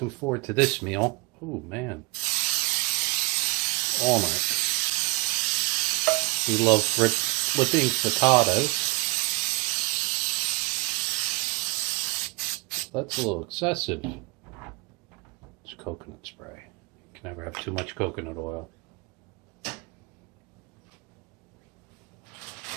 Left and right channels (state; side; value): quieter; left; 25.5 dB